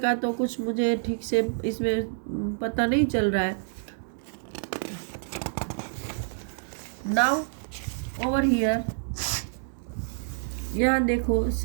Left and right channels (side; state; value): left; silent; digital silence